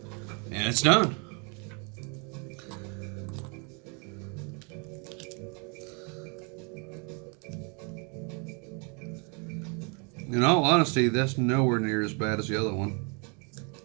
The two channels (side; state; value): left; quieter; 34.8 dB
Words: And it's done. In all honesty, that's nowhere near as bad as the other one.